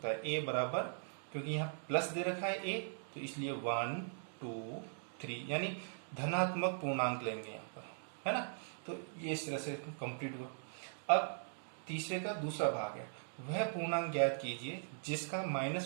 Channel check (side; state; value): left; silent; digital silence